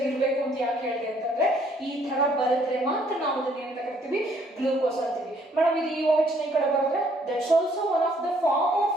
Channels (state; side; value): normal; both; correlation 0.65